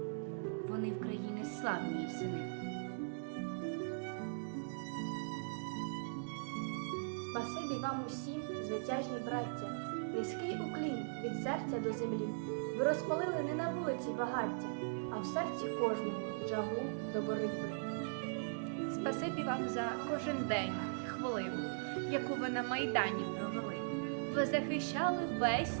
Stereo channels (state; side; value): silent; left; digital silence